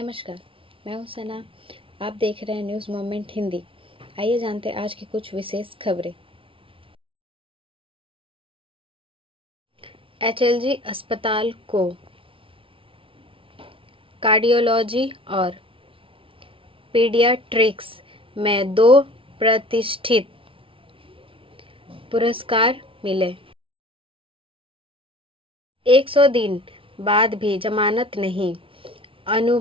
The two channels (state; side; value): late; left; 0.25 ms